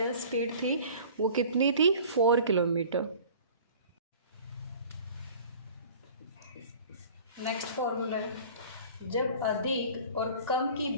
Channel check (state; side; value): inverted; both; correlation -0.45